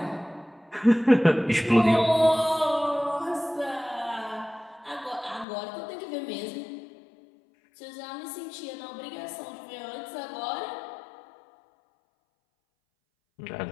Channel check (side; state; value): right; drops out; at 5.5 s